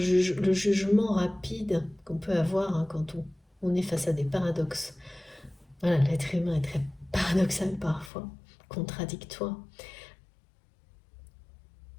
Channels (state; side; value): drops out; right; at 8.1 s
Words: jugement rapide qu'on peut avoir quand on est face à des paradoxes. Voilà, l'être humain est très paradoxal parfois, contradictoire.